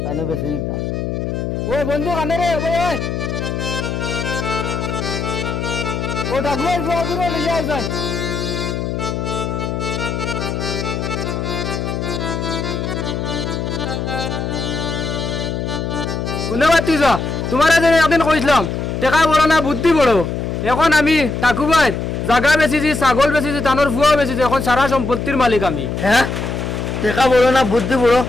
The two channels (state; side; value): noise; left; hum, 3 dB below the sound